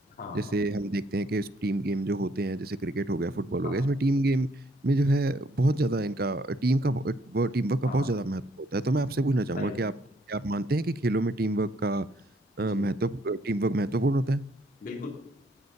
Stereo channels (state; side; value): normal; both; correlation 0.67